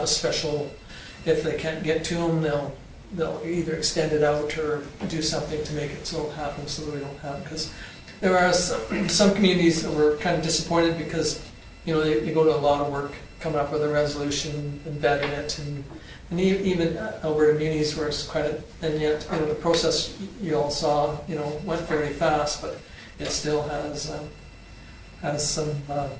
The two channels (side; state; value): both; identical; correlation 1.00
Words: a special, if they can't get to them, they'll either extend it out or do something to make it so it happens, so that we don't have, because there are some communities that were kind of disappointed because they go to a lot of work coming up with a resolution and vetting it, and even Alberta Munis where it's quite and yet the process you all saw went very fast, but it still has some